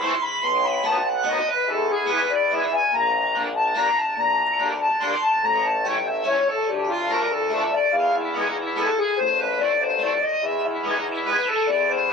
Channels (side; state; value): both; normal; correlation 0.54